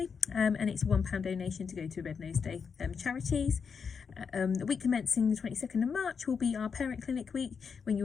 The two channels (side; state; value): right; quieter; 6.0 dB